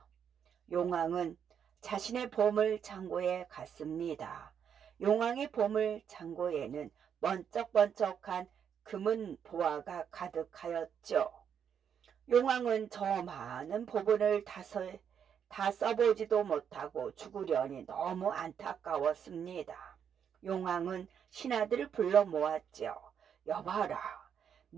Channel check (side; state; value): left; quieter; 8.0 dB